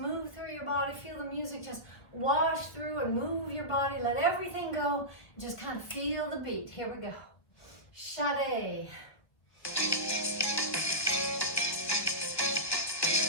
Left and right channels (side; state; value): right; late; 1.8 ms